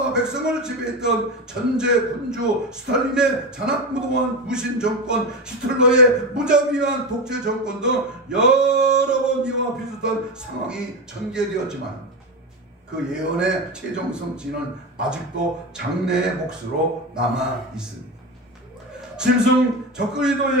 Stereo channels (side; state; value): both; normal; correlation 0.19